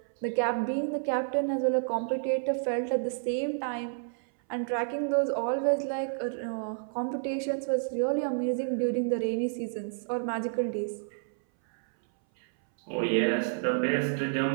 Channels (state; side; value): silent; left; 58 dB below the other